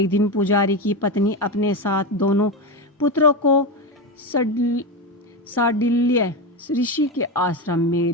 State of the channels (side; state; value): both; normal; correlation 0.15